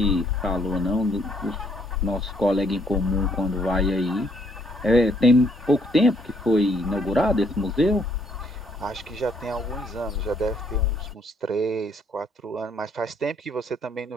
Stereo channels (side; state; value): both; normal; correlation 0.68